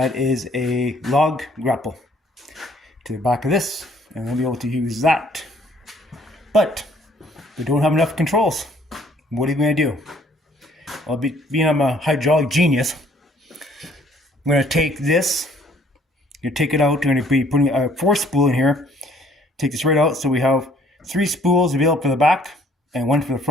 is a log grapple to the back of this, and we'll be able to use that. But we don't have enough controls. What are you going to do? Well, being I'm a hydraulic genius, I'm going to take this, take it out. I'm going to be putting a 4-spool in here. Take this right out, so we have 3 spools available for the back and 1 for the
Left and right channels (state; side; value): normal; both; correlation 0.60